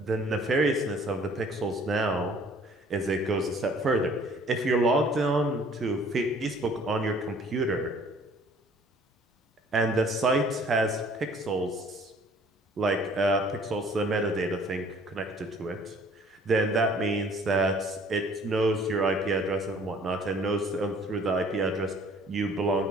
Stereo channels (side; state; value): both; normal; correlation 0.55